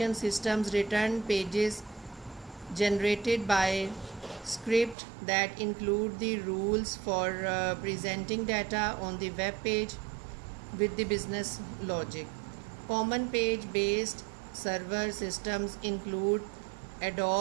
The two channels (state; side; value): drops out; left; at 5.0 s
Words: systems return pages generated by script that include the rules for presenting data on the web page with the business logic. Common page-based server systems include